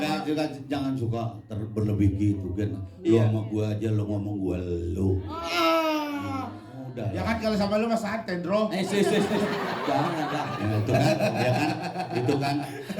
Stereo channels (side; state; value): both; identical; correlation 1.00